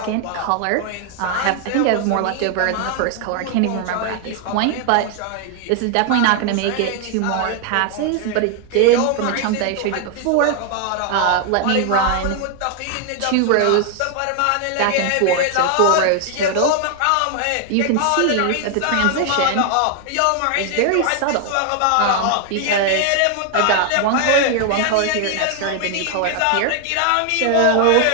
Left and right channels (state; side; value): different; both; correlation 0.00